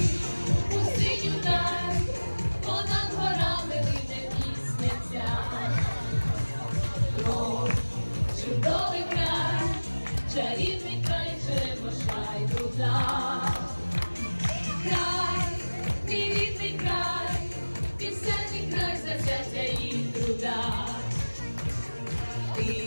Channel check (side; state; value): both; inverted; correlation -1.00